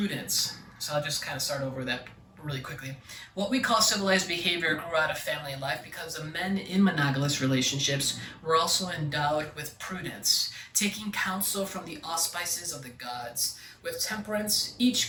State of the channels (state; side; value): identical; both; correlation 1.00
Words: So I'll just kind of start over that really quickly. What we call civilized behavior grew out of family life because the men in monogamous relationships were also endowed with prudence, taking counsel from the auspices of the gods, with temperance,